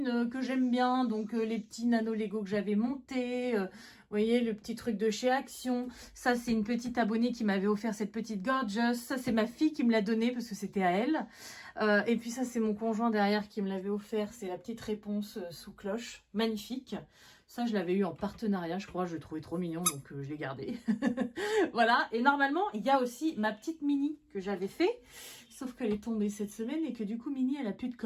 que j'aime bien. Donc, les petits nano Lego que j'avais montés. Vous voyez, le petit truc de chez Action. Ça, c'est une petite abonnée qui m'avait offert cette petite Gorgeous. Ça, c'est ma fille qui me l'a donnée parce que c'était à elle. Et puis, ça, c'est mon conjoint derrière qui me l'avait offert. C'est la petite réponse sous cloche. Magnifique. Ça, je l'avais eu en partenariat, je crois. Je le trouvais trop mignon, donc je l'ai gardé. Voilà. Et normalement, il y a aussi ma petite Mini que j'avais fait. Sauf qu'elle est tombée cette semaine et que du coup, Mini, elle a plus de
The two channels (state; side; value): identical; both; correlation 1.00